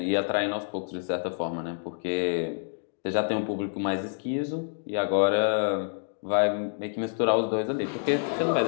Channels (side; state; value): right; silent; digital silence